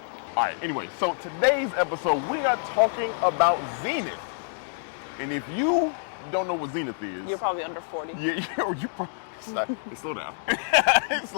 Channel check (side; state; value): right; silent; digital silence